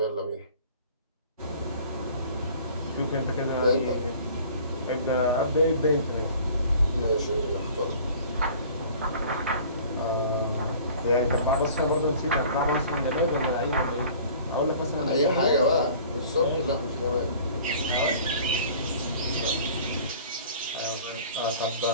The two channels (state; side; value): inverted; both; correlation -0.48